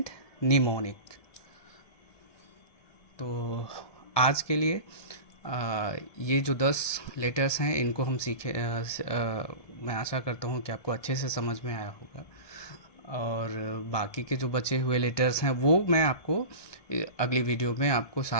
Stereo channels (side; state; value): right; late; 1.7 ms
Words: निमोनिक। तो आज के लिए ये जो 10 लेटर्स हैं इनको हम सीखे। मैं आशा करता हूँ कि आपको अच्छे से समझ में आया होगा, और बाकी के जो बचे हुए लेटर्स हैं वो मैं आपको अगली वीडियो में आपको